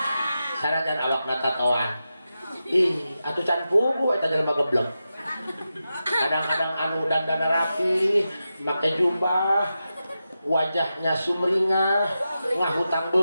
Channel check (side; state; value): both; inverted; correlation -0.90